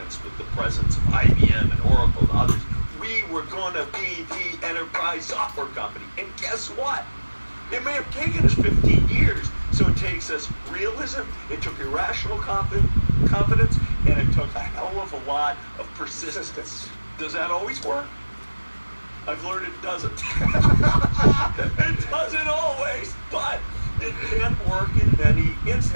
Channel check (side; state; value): both; inverted; correlation -1.00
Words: with the presence of IBM and Oracle and others. We were going to be the enterprise software company, and guess what? It may have taken us 15 years, so it takes us realism, it took irrational confidence, and it took a hell of a lot of persistence. Does that always work? I've learned it doesn't. It doesn't always, but it can work in many